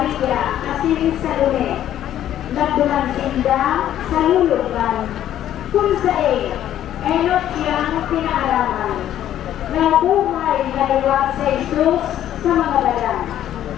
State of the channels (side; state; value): right; quieter; 11.6 dB